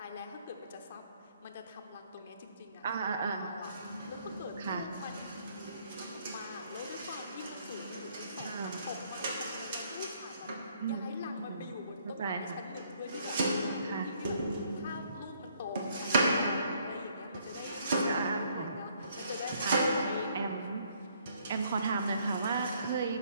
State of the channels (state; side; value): inverted; both; correlation -0.66